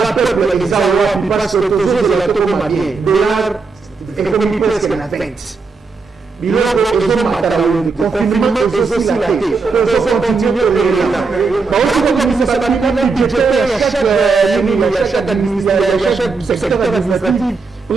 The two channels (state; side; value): quieter; left; 4.4 dB